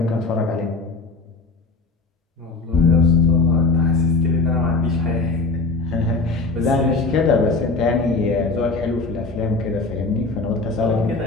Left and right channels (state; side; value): quieter; right; 3.6 dB